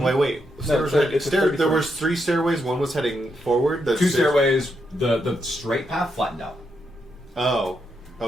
Wait. No, it's a 30 there was 3 stairways. One was heading forward. The 2 stairs- stairways, the straight path flattened out. Oh,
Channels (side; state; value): both; normal; correlation 0.81